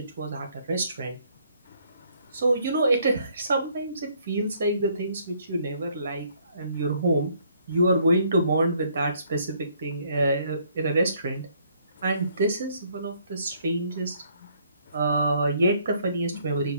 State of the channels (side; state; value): both; inverted; correlation -0.66